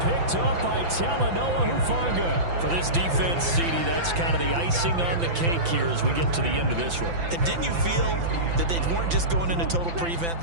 Picked up by Talanoa Hufanga. For this defense, CD, that's kind of the icing on the cake here as we get to the end of this one. And didn't you feel that they weren't just going into total prevent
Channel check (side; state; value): left; late; 5.9 ms